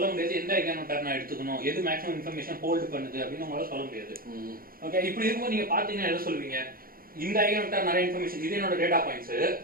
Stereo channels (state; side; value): late; left; 0.42 ms